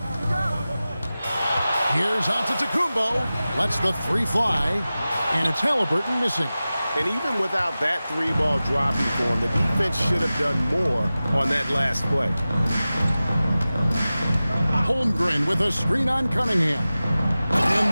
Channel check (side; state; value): both; inverted; correlation -0.96